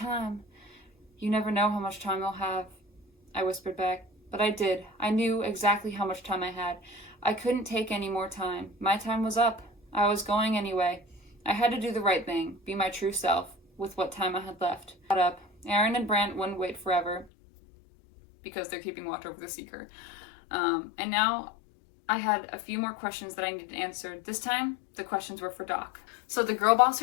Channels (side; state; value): right; drops out; at 17.2 s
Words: You never know how much time you'll have, I whispered back. But I did. I knew exactly how much time I had. I couldn't take any more time. My time was up. I was going anyway. I had to do the right thing, be my true self, with what time I had left. Got up. Aaron and Brant wouldn't wait forever, because they're keeping watch over the Seeker. And now I had a few more questions that I needed answered. This time, the questions were for Doc. So the girl boss